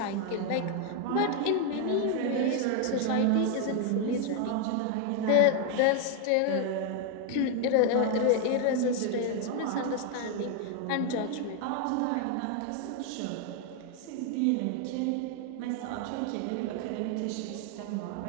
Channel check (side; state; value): both; different; correlation 0.01